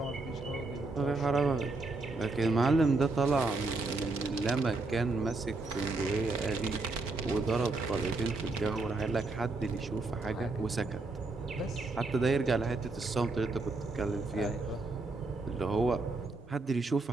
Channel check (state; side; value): quieter; left; 3.5 dB